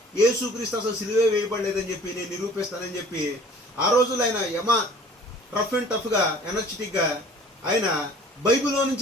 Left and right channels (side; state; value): both; normal; correlation 0.49